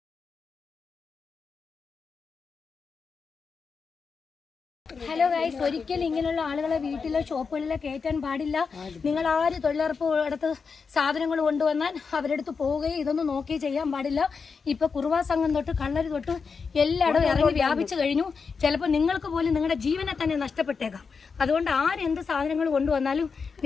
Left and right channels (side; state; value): right; quieter; 5.3 dB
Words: ഹലോ ഗൈസ്, ഒരിക്കലും ഇങ്ങനെയുള്ള ആളുകളെ വീട്ടിലോ ഷോപ്പുകളിലോ കയറ്റാൻ പാടില്ല. നിങ്ങൾ ആര് തൊഴിലുറപ്പ് അടുത്ത് സാധനങ്ങൾ കൊണ്ടുവന്നാൽ അവരെടുത്ത് പോവുകയും ഇതൊന്നും നോക്കി ചെയ്യാൻ പാടില്ല. ഇപ്പൊ കുറുവാ സംഘം തൊട്ട് കള്ളര് തൊട്ട് എല്ലായിടും ഇറങ്ങി വ്യാപിച്ചു കഴിഞ്ഞു. ചിലപ്പോൾ നിങ്ങൾക്ക് പോലും നിങ്ങളുടെ ജീവനെ തന്നെ നഷ്ടപ്പെട്ടേക്കാം. അതുകൊണ്ട് ആരെന്ത് സാധനങ്ങൾ കൊണ്ടുവന്നാലും